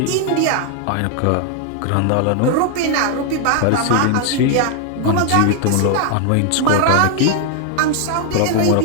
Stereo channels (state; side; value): different; both; correlation 0.00